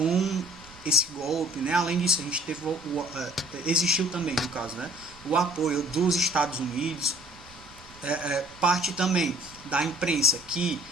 esse golpe, né? Além disso, a gente teve existiu também, no caso, né, o apoio dos Estados Unidos, parte também da imprensa que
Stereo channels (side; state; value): right; noise; rumble, 24 dB below the sound